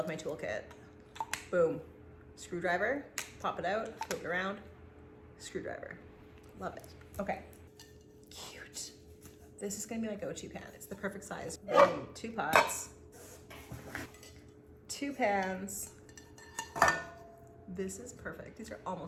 my toolkit. Boom. Screwdriver, pop it out, flip it around, screwdriver. Love it. Okay. Cute. This is gonna be my go-to pan. It's the perfect size. 2 pots, 2 pans. This is perfect. These are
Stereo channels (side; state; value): both; identical; correlation 1.00